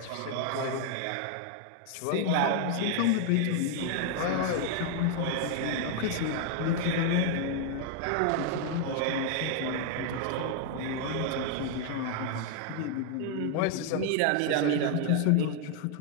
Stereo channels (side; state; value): both; different; correlation 0.00